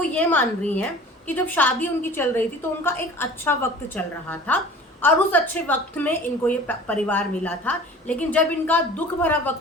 ये मान रही हैं कि जब शादी उनकी चल रही थी तो उनका एक अच्छा वक्त चल रहा था और उस अच्छे वक्त में इनको ये परिवार मिला था, लेकिन जब इनका दुख भरा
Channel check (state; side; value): normal; both; correlation 0.43